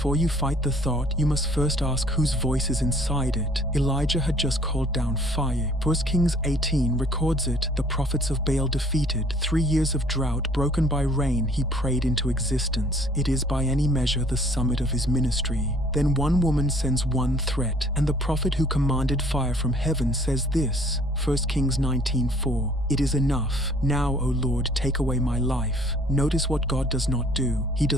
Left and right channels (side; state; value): both; normal; correlation 0.56